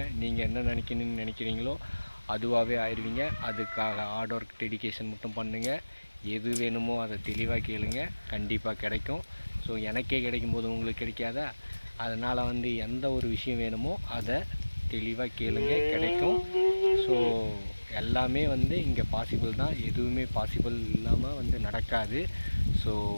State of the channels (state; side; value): inverted; both; correlation -1.00